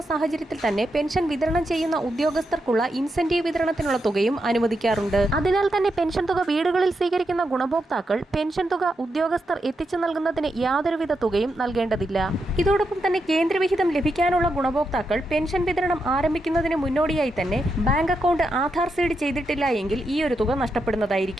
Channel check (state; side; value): normal; both; correlation 0.84